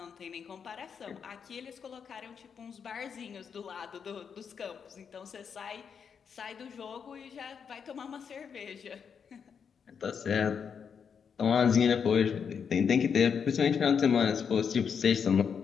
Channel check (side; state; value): right; quieter; 6.8 dB